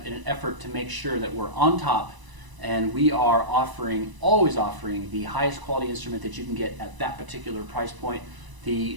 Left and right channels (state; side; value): late; left; 1.0 ms